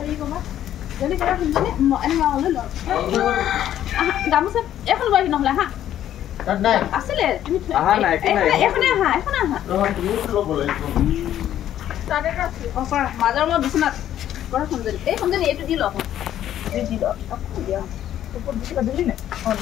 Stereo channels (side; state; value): right; quieter; 11.5 dB